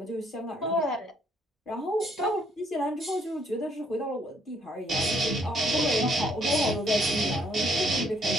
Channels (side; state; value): both; normal; correlation 0.68